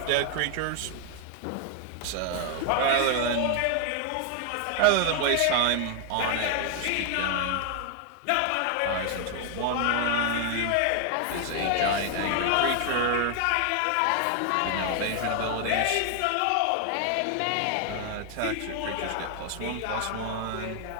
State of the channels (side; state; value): both; different; correlation 0.00